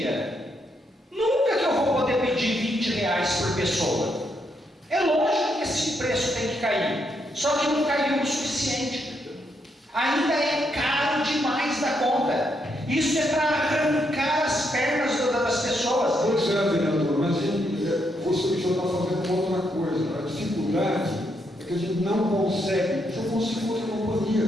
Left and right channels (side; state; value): both; normal; correlation 0.78